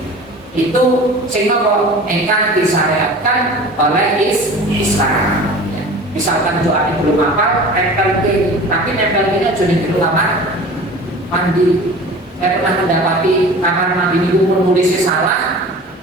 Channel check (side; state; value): both; normal; correlation 0.40